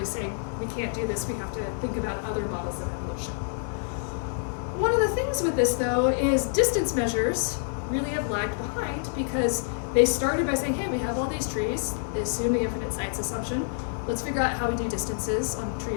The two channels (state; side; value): silent; right; digital silence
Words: saying we can't do this, we have to think about other models of evolution. One of the things with this, though, is distance measures really have lagged behind because they started by saying, hey, we have all these trees, they assume the infinite sites assumption, let's figure out how we do distances on